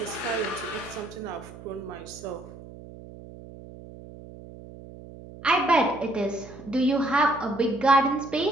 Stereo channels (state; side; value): noise; right; hum, 16 dB below the sound